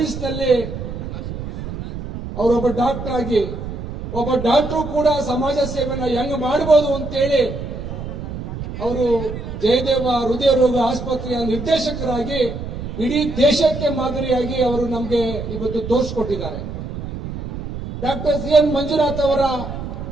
ಅವರೊಬ್ಬ ಡಾಕ್ಟರ್ ಆಗಿ ಒಬ್ಬ ಡಾಕ್ಟರ್ ಕೂಡ ಸಮಾಜ ಸೇವೆನ ಹೆಂಗ್ ಮಾಡಬಹುದು ಅಂತೇಳಿ ಅವರು ಜಯದೇವ ಹೃದಯ ರೋಗ ಆಸ್ಪತ್ರೆಯ ನಿರ್ದೇಶಕರಾಗಿ ಇಡೀ ದೇಶಕ್ಕೆ ಮಾದರಿಯಾಗಿ ಅವರು ನಮಗೆ ಇವತ್ತು ತೋರಿಸಿಕೊಟ್ಟಿದ್ದಾರೆ. Doctor CN. ಮಂಜುನಾಥ್ ಅವರ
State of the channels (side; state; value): right; noise; rumble, 8 dB below the sound